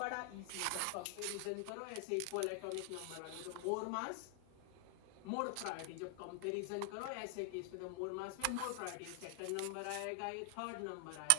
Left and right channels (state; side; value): different; both; correlation 0.00